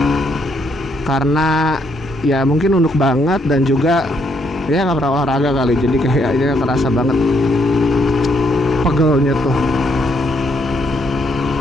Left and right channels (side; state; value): both; normal; correlation 0.73